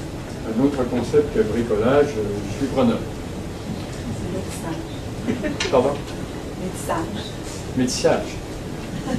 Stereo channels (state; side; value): identical; both; correlation 1.00